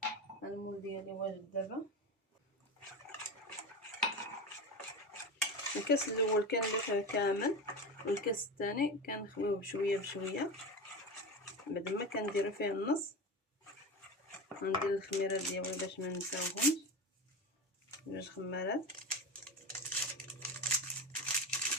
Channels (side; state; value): both; normal; correlation 0.24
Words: المول ديالي واجد. دابا الكاس الاول كنلفه كامل، والكاس الثاني كنخويه بشويه بشويه. بعد ما كنديرو فيه النص غندير الخميره ديالي باش ما نساوهمش، 2 خمارات.